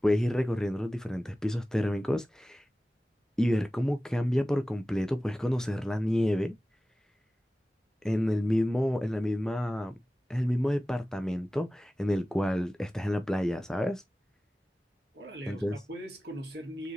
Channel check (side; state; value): both; normal; correlation 0.96